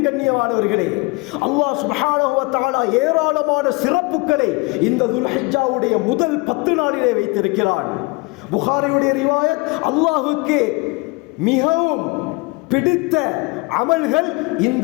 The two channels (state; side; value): quieter; right; 26.5 dB